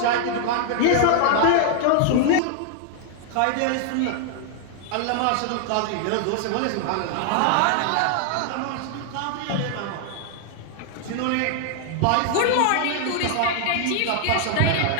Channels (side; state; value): both; different; correlation 0.00